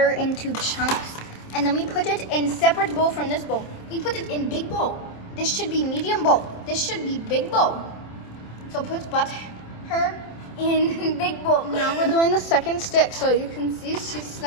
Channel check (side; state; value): right; late; 27 ms